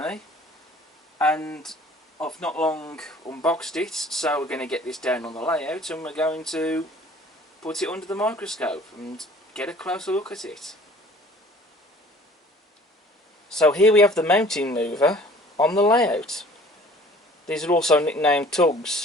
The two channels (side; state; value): both; normal; correlation 0.51